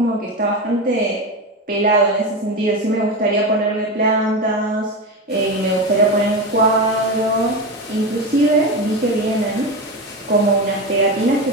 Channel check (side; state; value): both; normal; correlation 0.20